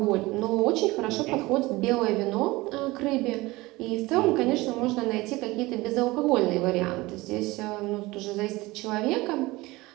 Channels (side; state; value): left; quieter; 20.7 dB